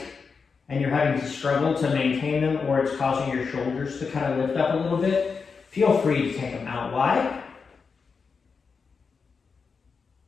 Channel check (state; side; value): quieter; right; 5.3 dB